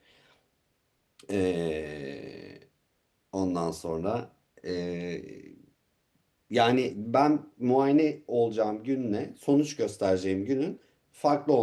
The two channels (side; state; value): both; identical; correlation 1.00